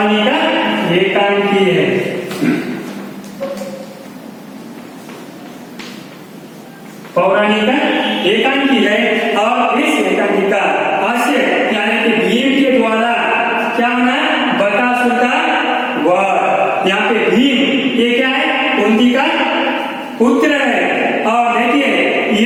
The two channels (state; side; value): identical; both; correlation 1.00